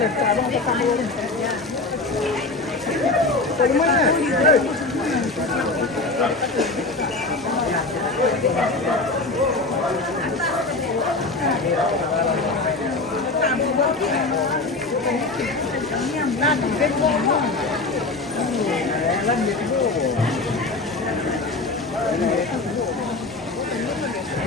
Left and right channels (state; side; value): quieter; right; 3.3 dB